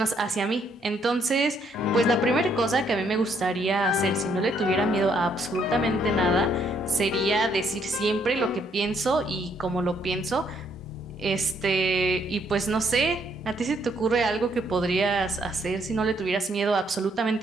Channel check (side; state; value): both; normal; correlation 0.70